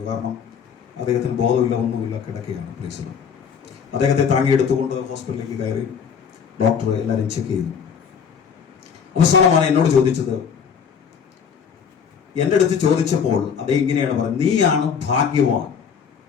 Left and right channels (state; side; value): quieter; right; 6.9 dB